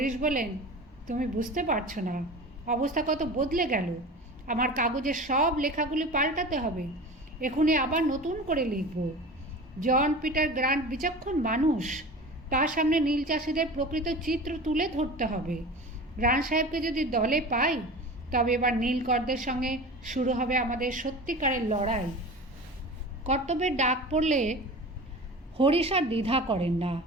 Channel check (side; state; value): both; normal; correlation 0.35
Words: বলেন, তুমি বুঝতে পারছো না, অবস্থা কত বদলে গেল। আমার কাগজের সব লেখাগুলি পাল্টাতে হবে। এখনই আবার নতুন করে লিখব। জন পিটার গ্রান্ট বিচক্ষণ মানুষ, তার সামনে নীল চাষিদের প্রকৃত চিত্র তুলে ধরতে হবে। গ্রান্ট সাহেবকে যদি দলে পাই, তবে এবার নীলকরদের সঙ্গে শুরু হবে আমাদের সত্যিকারের লড়াই। কর্তব্যের ডাক পড়লে হরিশ আর দ্বিধা করেন না।